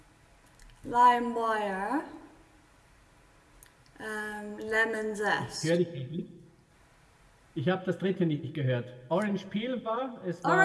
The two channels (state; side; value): identical; both; correlation 1.00